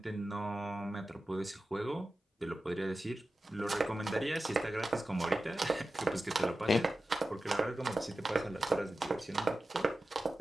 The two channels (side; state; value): both; normal; correlation 0.93